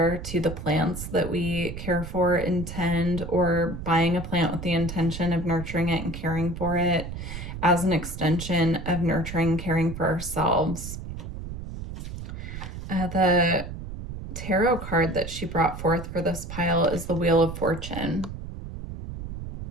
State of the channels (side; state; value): right; noise; rumble, 9 dB below the sound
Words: to the plants that we care for, intend, or buying a plant with the intention of nurturing it and caring for it as an extension of nurturing, caring for ourselves. The tarot card that she brought forth for this pile is the Wheel of Fortune.